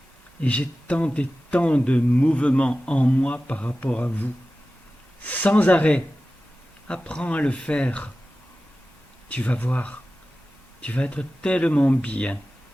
Et j'ai tant et tant de mouvements en moi par rapport à vous. Sans arrêt. Apprends à le faire. Tu vas voir. Tu vas être tellement bien,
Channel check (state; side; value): normal; both; correlation 0.95